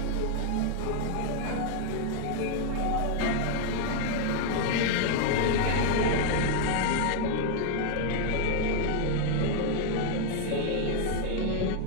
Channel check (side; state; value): both; different; correlation 0.00